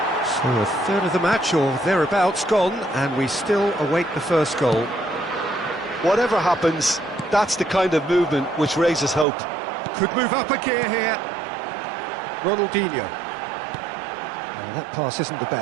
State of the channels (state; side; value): drops out; left; at 9.2 s